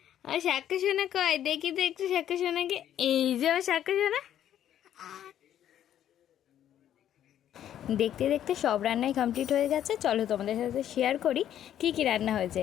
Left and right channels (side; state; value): right; quieter; 10.8 dB